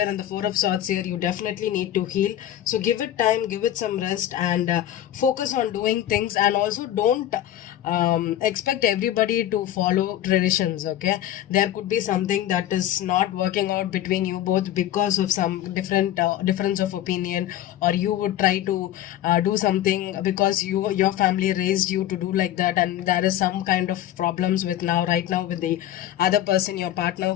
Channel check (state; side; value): quieter; right; 12.3 dB